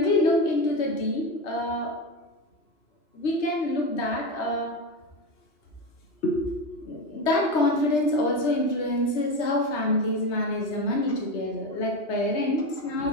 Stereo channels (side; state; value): right; late; 3.3 ms